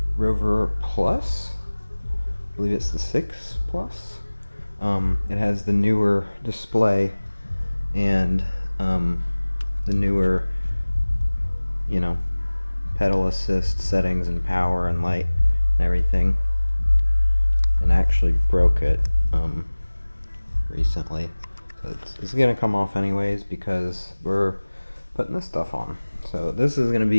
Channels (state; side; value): inverted; both; correlation -1.00